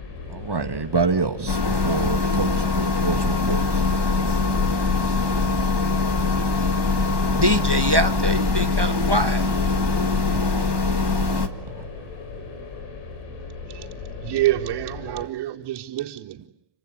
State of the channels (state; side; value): late; left; 1.1 ms